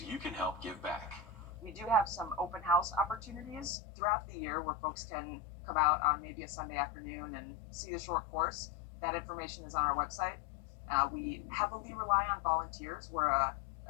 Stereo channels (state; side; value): drops out; right; at 3.8 s